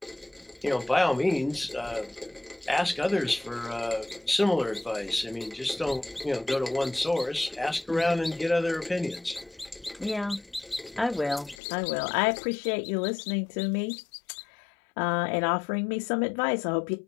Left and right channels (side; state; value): right; drops out; at 11.6 s